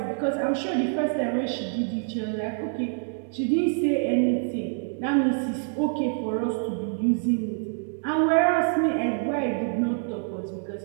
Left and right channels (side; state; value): left; silent; 61 dB below the other